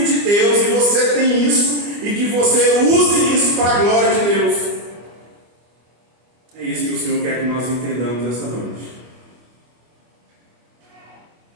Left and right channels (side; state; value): left; late; 24 ms